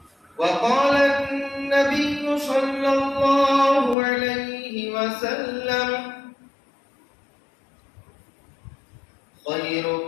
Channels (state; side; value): drops out; right; at 4.0 s